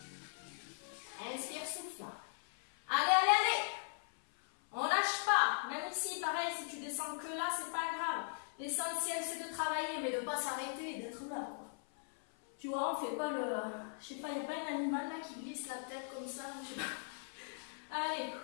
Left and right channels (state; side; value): silent; right; 52 dB below the other